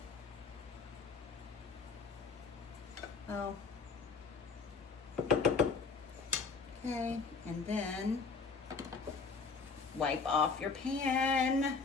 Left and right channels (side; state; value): right; quieter; 4.8 dB